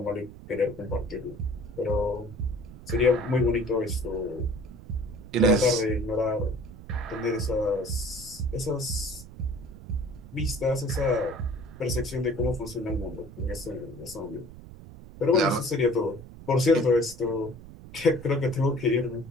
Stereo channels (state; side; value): noise; right; rumble, 16 dB below the sound